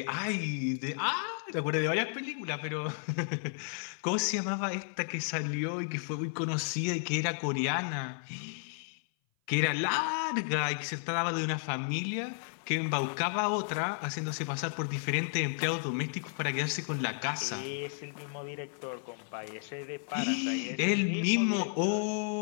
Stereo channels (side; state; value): right; silent; 56 dB below the other